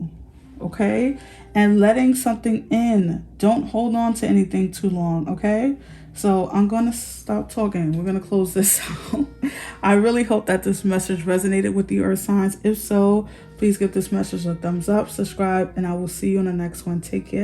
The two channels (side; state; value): both; identical; correlation 1.00